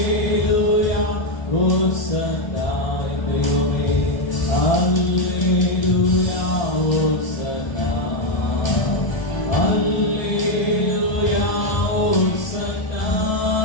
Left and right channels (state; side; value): late; right; 1.3 ms